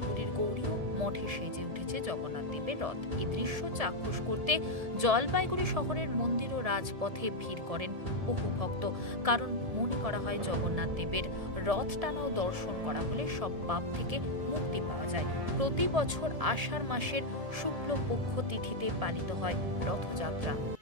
গৌরীয় মঠে সেজে উঠেছে জগন্নাথ দেবের রথ। এই দৃশ্য চাক্ষুষ করতে জলপাইগুড়ি শহরের মন্দির ও রাজপথে ভিড় করেন বহু ভক্ত। কারণ মনে করা হয় জগন্নাথ দেবের রথ টানা ও দর্শন করা হলে সব পাপ থেকে মুক্তি পাওয়া যায়। প্রতি বছর আষাঢ় মাসের শুক্লপক্ষ তিথিতে পালিত হয় রথযাত্রা।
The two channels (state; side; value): late; left; 1.7 ms